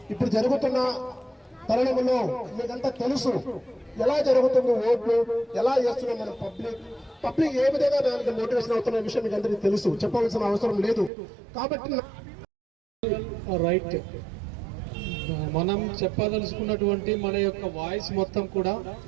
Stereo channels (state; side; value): drops out; left; at 11.1 s